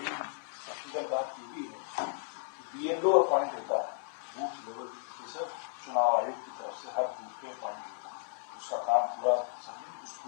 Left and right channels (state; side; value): silent; right; digital silence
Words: टेक्निकल बात ये भी है कि BLO appoint होता है बूथ लेवल ऑफिसर चुनाव आयोग की तरफ से हर बूथ पे अपॉइंट होता है उसका काम पूरा समझे उस